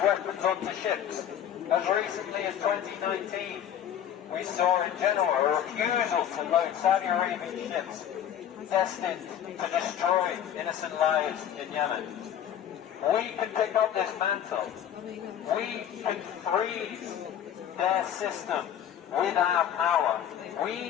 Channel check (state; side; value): quieter; right; 9.9 dB